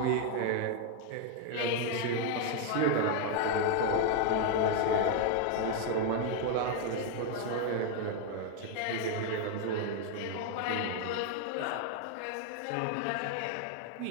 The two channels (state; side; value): different; both; correlation 0.00